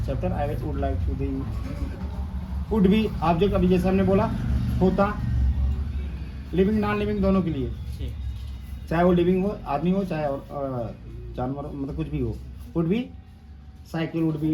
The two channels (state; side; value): identical; both; correlation 1.00